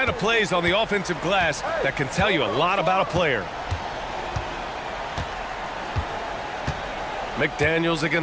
of plays on the offensive glass that can tell you a lot about a player. McDaniels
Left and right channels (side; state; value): both; identical; correlation 1.00